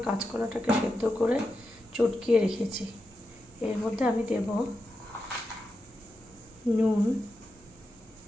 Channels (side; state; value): both; normal; correlation 0.88